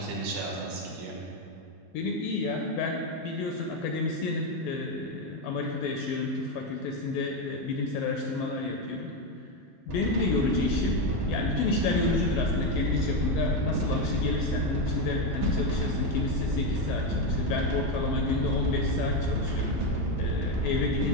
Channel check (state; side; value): normal; both; correlation 0.09